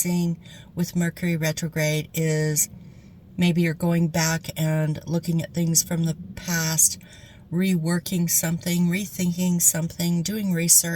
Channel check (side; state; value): both; identical; correlation 1.00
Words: with Mercury retrograde is maybe you're going back and looking at things from the past, reworking something, rethinking something, doing